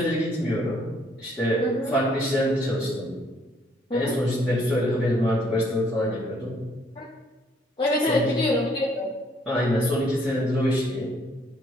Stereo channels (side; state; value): both; normal; correlation 0.66